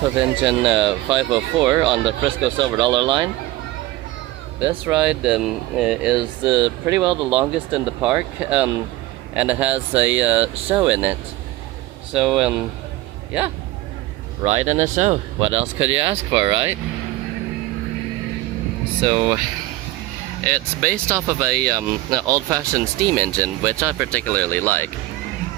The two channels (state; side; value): quieter; left; 17.2 dB